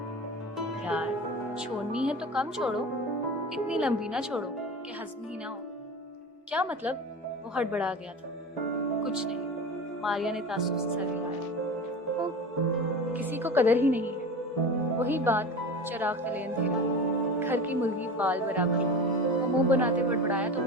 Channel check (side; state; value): both; normal; correlation 0.30